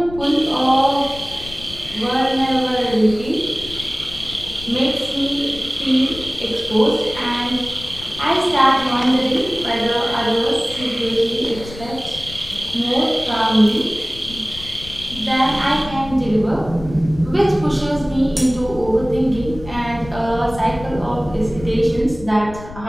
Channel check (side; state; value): left; noise; rumble, 14 dB below the sound